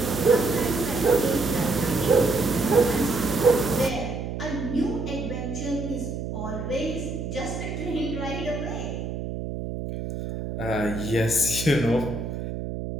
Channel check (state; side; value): noise; right; hum, 5 dB below the sound